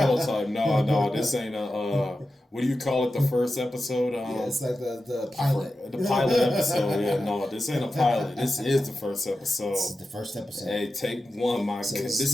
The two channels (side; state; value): both; normal; correlation 0.92